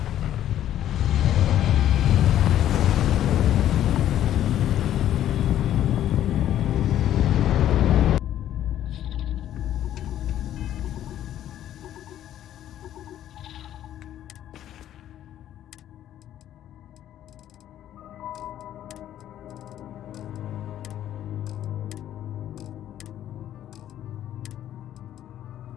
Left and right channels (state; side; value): quieter; right; 11.6 dB